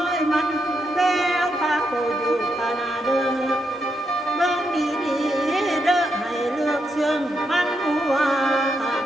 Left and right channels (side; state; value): both; normal; correlation 0.81